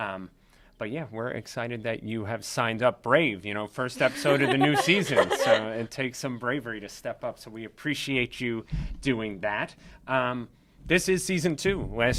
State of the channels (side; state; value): both; identical; correlation 1.00